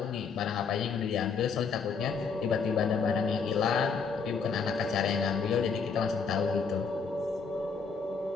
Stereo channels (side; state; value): right; quieter; 5.4 dB